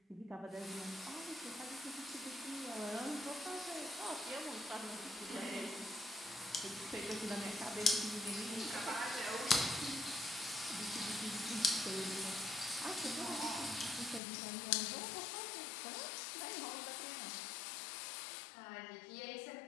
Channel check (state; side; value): drops out; right; at 14.2 s